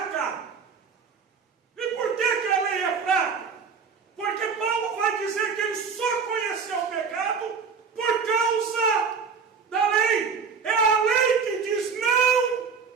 E por que a lei é fraca? Porque Paulo vai dizer que ele só conheceu o pecado por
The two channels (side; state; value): left; quieter; 5.8 dB